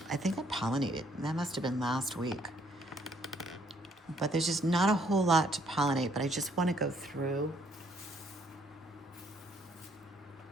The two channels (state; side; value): normal; both; correlation 0.67